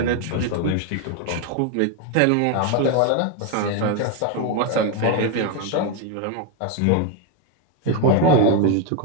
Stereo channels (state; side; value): different; both; correlation 0.02